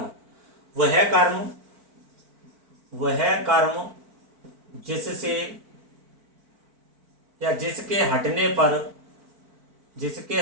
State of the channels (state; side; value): late; left; 4.5 ms